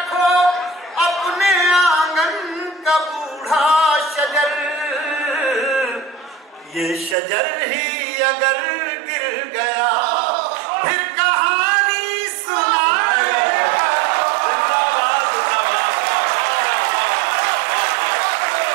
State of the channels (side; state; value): left; drops out; at 7.2 s